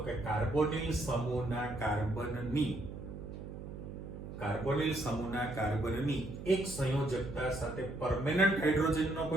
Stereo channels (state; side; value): noise; right; hum, 10 dB below the sound